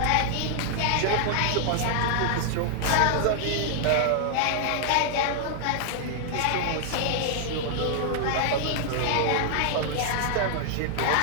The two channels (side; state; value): both; different; correlation -0.01